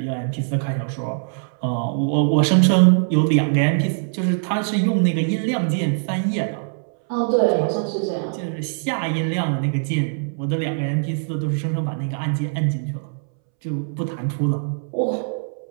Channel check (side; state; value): left; silent; 64 dB below the other